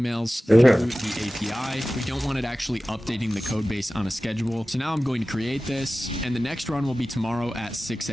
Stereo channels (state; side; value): normal; both; correlation 0.96